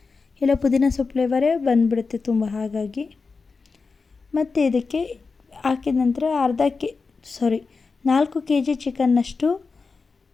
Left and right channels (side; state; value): right; quieter; 4.5 dB